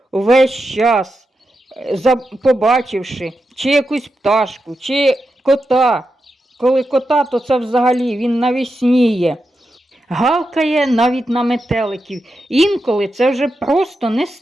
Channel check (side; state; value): both; normal; correlation 0.88